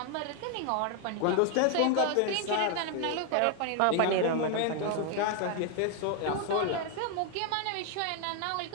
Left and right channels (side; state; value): both; different; correlation 0.00